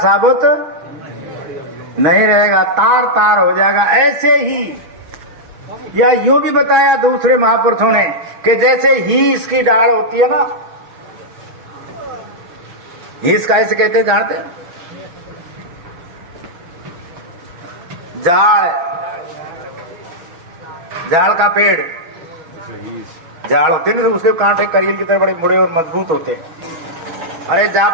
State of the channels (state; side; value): late; left; 6.1 ms